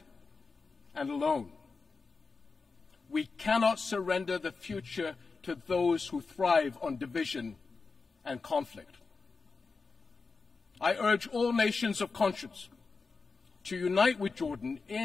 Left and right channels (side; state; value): right; quieter; 4.4 dB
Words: and alone. We cannot surrender the future to those who thrive on division and conflict. I urge all nations of conscience to unite with Jordan